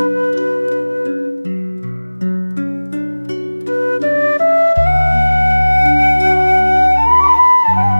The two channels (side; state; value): both; inverted; correlation -1.00